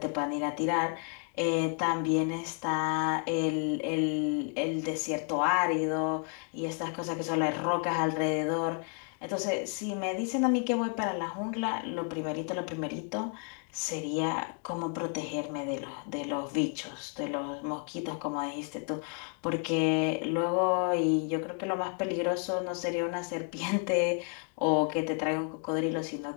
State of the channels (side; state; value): right; quieter; 39.5 dB